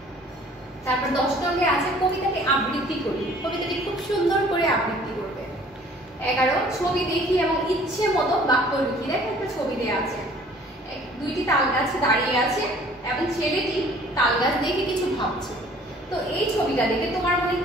তারপর 10 নং-এ আছে কবিতাকে আবৃত্তি করি। কবিতাটি খুব সুন্দর করে আবৃত্তি করবে। 11 ছবি দেখি এবং ইচ্ছে মতো বাক্য লিখি। দেখো একটা ছবি দেওয়া আছে, 2টি তালগাছ দাঁড়িয়ে আছে এবং ছেলেটি তালগাছ দেখে কিছু ভাবছে। তো এই ছবিটা দেখে তোমার মনে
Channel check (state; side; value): normal; both; correlation 0.53